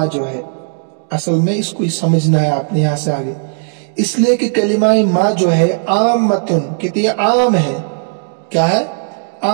جو ہے، اصل میں اس کو سمجھنا ہے آپ نے یہاں سے آگے، اس لیے کہ کلمہ ما جو ہے عامتن، کہتے ہیں عام ہے، کیا ہے؟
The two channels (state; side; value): silent; left; 70 dB below the other